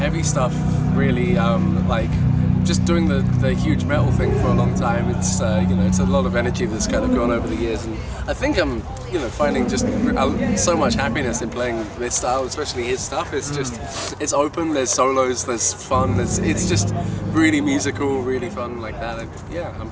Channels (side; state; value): both; identical; correlation 1.00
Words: stuff really. Just doing the huge metal thing for a long time. It's it's a lot of energy that's kind of gone over the years, and I think I'm finding just so much happiness in playing this style, especially his stuff. It's just it's open. There's solos. There's fun. It's just really musical, really fun like that. I'm